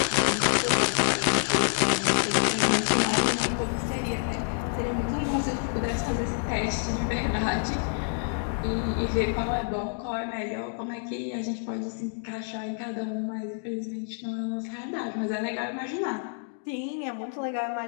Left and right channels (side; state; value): right; silent; 59 dB below the other